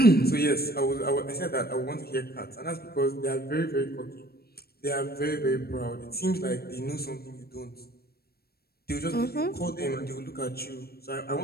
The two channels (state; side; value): late; right; 0.45 ms